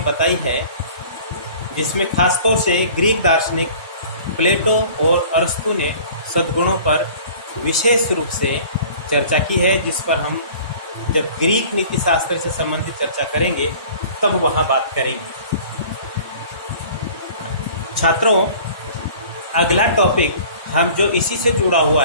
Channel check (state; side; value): inverted; both; correlation -0.46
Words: बताई है, जिसमें खासतौर से ग्रीक दार्शनिक प्लेटो और अरस्तु ने सद्गुणों पर विशेष रूप से चर्चा की है, जिस पर हम जब ग्रीक नीति शास्त्र से संबंधित चर्चा करेंगे तब वहां बात करेंगे। छात्रों, अगला टॉपिक हम जो इसी से जुड़ा हुआ